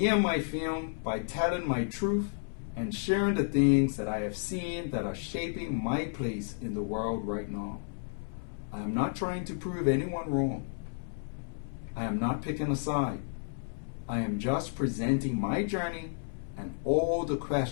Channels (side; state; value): right; silent; 57 dB below the other